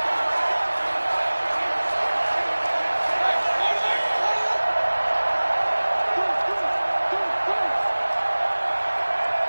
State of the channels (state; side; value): inverted; both; correlation -1.00